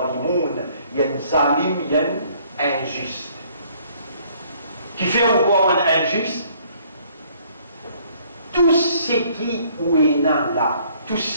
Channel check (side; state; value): both; inverted; correlation -0.61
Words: يَنْزَالِمْ ين injuste. Qui fait encore un injuste? Tout ce qui est là, tout